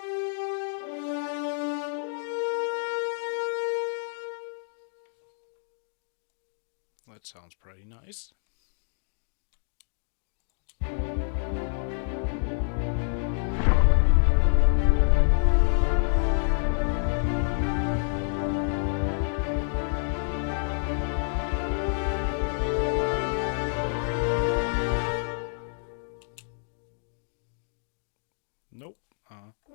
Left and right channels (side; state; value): right; silent; digital silence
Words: That sounds pretty nice. Nope.